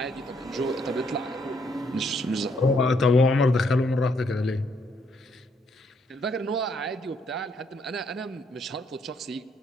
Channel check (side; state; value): both; normal; correlation 0.71